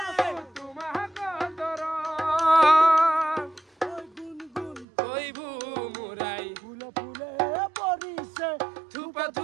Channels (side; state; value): left; drops out; at 4.9 s